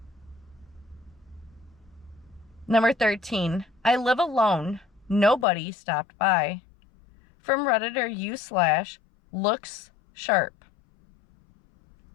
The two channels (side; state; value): right; drops out; at 5.5 s